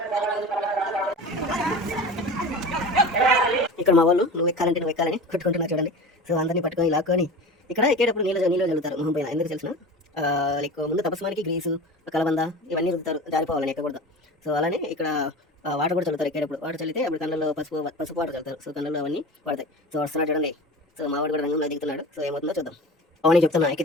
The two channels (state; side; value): normal; both; correlation 0.34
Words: ఇక్కడ మా వాళ్ళు నువ్వు ఎక్కాలని కొట్టుకుంటున్నారు చూడండి. సో అందరినీ పట్టుకొని లాక్కొని ఇక్కడ ఎక్కేటప్పుడు నీళ్ళు చల్లుతారు మొహం పైన. ఎందుకు తెలిసిన లైక్ ముందు తపస్మానికి గ్రీసు, కలబంద ఇవన్నీ రుద్దుతారు జారిపోవాలని ఎక్కకూడదు. సో అలానే ఇక్కడ వాటర్ కూడా చల్లుతారు. ఎక్కేటప్పుడు వాటర్ చల్లితే అప్పుడు కళ్ళల్లో పసుపు వాటర్ చల్లుతారు. సో కళ్ళల్లో అవన్నీ పడతాయి. సో వస్తున్నాడు చూడండి. సో మా వాడు కూడా రంగంలో దిగుతున్నాడు. సో ఏమవుతుందో చూద్దాం. అవన్నీ చెప్తున్నా,